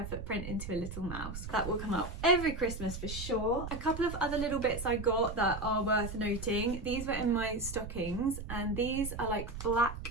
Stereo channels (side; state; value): right; noise; rumble, 8 dB below the sound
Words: footprint into a little mouse. That will come up every Christmas for sure. A couple of other little bits I got that are worth noting. These were in my stockings, and these are like